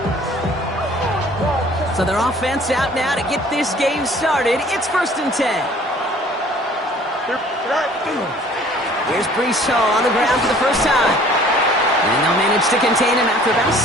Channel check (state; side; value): normal; both; correlation 0.53